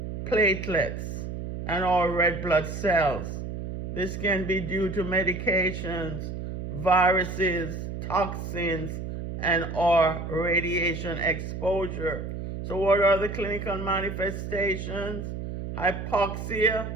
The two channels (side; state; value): right; noise; hum, 6 dB below the sound